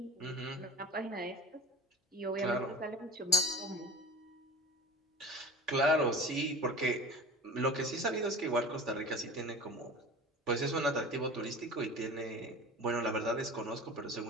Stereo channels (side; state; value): both; normal; correlation 0.36